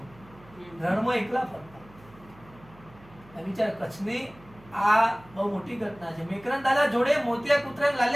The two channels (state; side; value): noise; right; hum, 24 dB below the sound